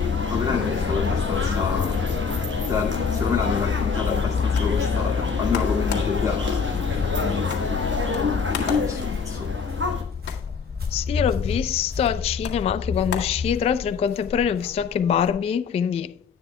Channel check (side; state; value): right; quieter; 5.8 dB